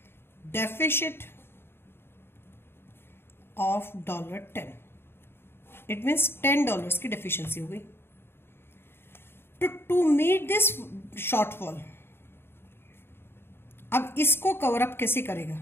deficit of $10. It means $10 की डेफिशिएंसी हो गई। टू मीट दिस शॉर्टफॉल, अब इसको कवर अप कैसे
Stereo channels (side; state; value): right; late; 0.11 ms